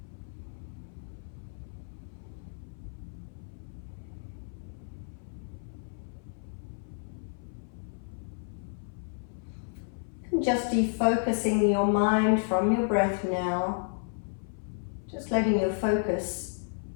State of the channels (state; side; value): silent; right; 57 dB below the other